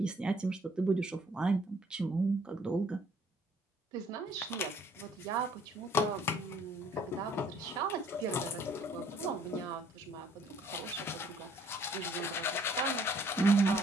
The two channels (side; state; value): both; normal; correlation 0.61